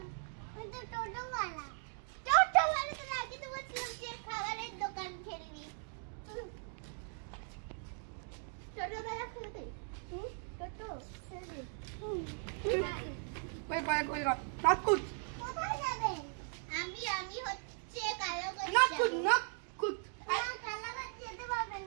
টোটোওয়ালা তো আগে তো বলছিলাম যে খাবারের দোকান খেলবি। টোটোওয়ালা খেলতে টোটো খেলবি। কই নাকুত কোথায় যাবে? আমি হচ্ছে কালাগঞ্জ নাকুত কালাগঞ্জ যেতে পারবে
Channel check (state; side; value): silent; left; 52 dB below the other